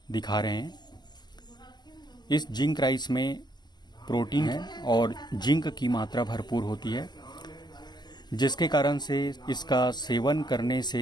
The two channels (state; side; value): late; right; 0.21 ms